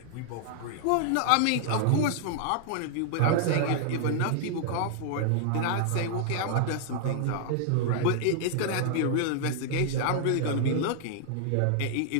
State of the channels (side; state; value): both; different; correlation -0.01